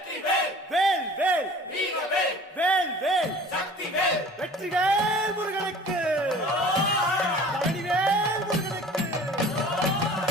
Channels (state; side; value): normal; both; correlation 0.45